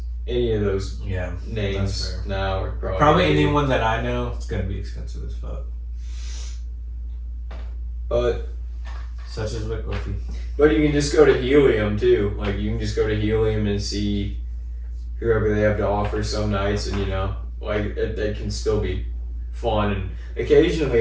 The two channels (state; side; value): identical; both; correlation 1.00